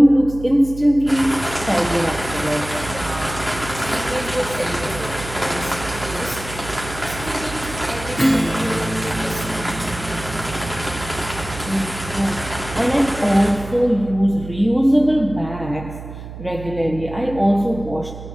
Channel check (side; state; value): right; noise; hum, 12 dB below the sound